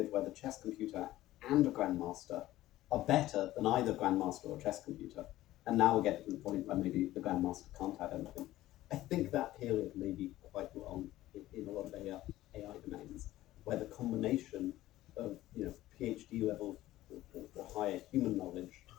where the chess computer and a grandmaster are better than either grandmaster or chess computer. And now we're getting to the point where maybe the grandmaster can't have anything. I think that period may be quite long in a lot of AI domains, where the combination of PhD level or higher human knowledge,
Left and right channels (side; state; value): right; quieter; 15.5 dB